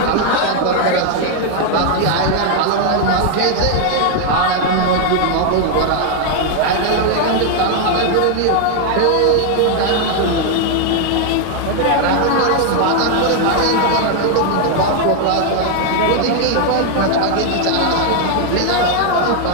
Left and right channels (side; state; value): both; different; correlation 0.00